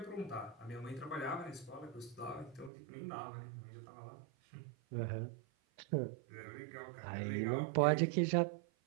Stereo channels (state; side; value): drops out; left; at 2.7 s